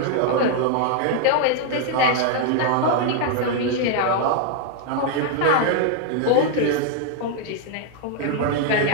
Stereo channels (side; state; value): both; different; correlation 0.00